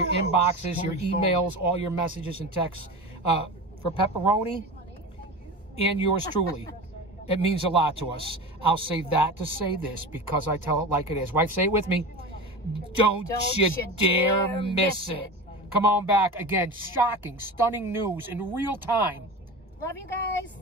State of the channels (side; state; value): both; normal; correlation 0.29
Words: inboxes, your emails, all your messages and texts. For Pepperoni and yours truly, it means a lot to us. I'll say that to say this because I tell it like it is. Wife, say it with me. Don't you dare miss it. Come on back. Again, shocking, stunning news in real time. Love you guys.